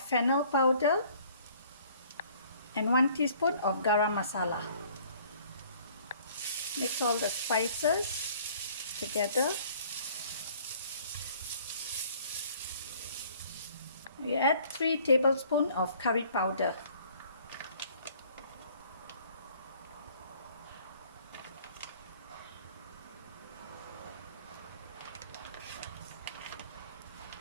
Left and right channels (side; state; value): both; inverted; correlation -0.56